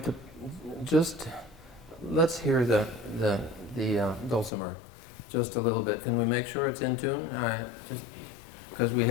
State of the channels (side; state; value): right; drops out; at 4.5 s